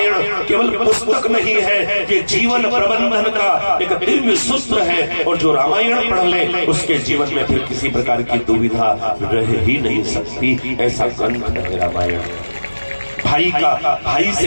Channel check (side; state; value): both; inverted; correlation -1.00